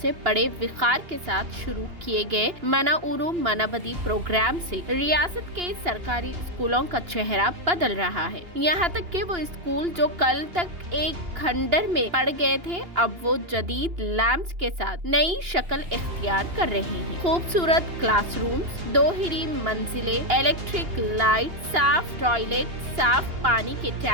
سے بڑے وقار کے ساتھ شروع کیے گئے منا اورو منا بدی پروگرام سے ریاست کے سرکاری اسکولوں کا چہرہ بدل رہا ہے۔ یہاں تک کہ وہ اسکول جو کل تک ایک کھنڈر میں پڑ گئے تھے اب وہ جدید لیمپس کے ساتھ نئی شکل اختیار کر رہے ہیں۔ خوبصورت کلاس رومز، 2 ہری منزلیں، الیکٹرک لائٹ، صاف ٹوائلٹ، صاف پانی کے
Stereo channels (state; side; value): late; left; 2.8 ms